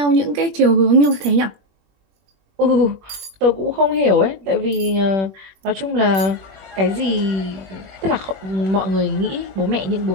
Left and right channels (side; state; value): left; late; 21 ms